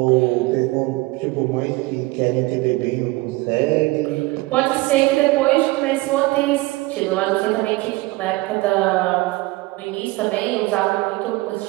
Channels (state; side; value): quieter; left; 21.3 dB